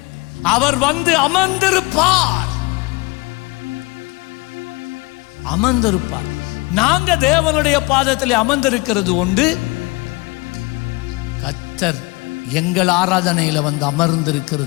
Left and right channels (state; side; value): quieter; right; 24.2 dB